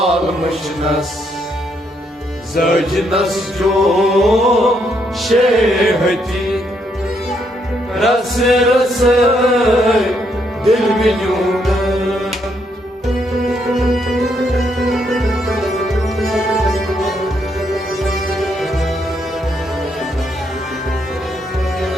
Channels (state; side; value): normal; both; correlation 0.75